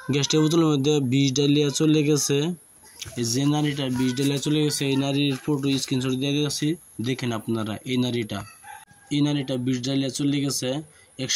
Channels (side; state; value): both; identical; correlation 1.00